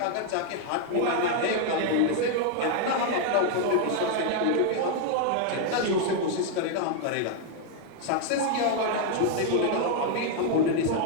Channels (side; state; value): both; different; correlation 0.00